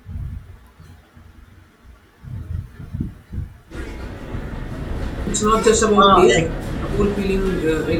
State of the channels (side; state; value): both; identical; correlation 1.00